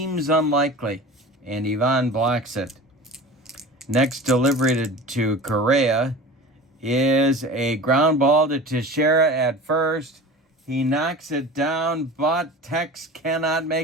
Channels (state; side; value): normal; both; correlation 0.36